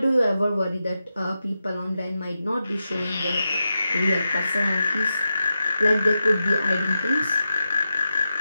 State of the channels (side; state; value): both; inverted; correlation -0.89